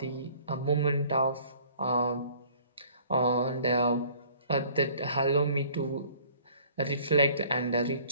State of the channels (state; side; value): inverted; both; correlation -0.54